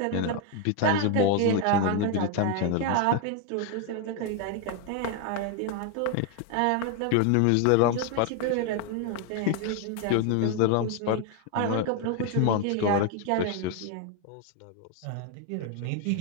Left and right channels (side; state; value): both; different; correlation 0.01